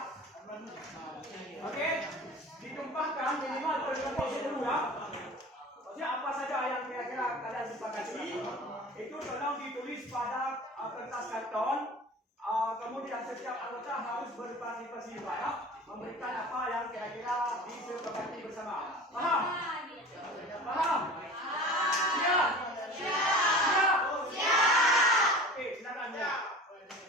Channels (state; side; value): normal; both; correlation 0.38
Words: Oke, ditumpahkan minimal per 20 ya. Maksudnya apa saja yang kira-kira kalian sepakati itu tolong ditulis pada kertas karton. Kemudian setiap anggota harus berpartisipasi juga ya, memberikan apa yang kira-kira disepakati bersama. Paham? Paham? Siap? Siap? Oke, silakan ya.